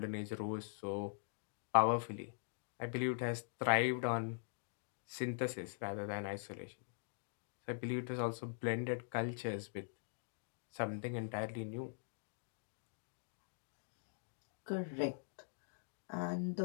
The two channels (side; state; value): right; silent; digital silence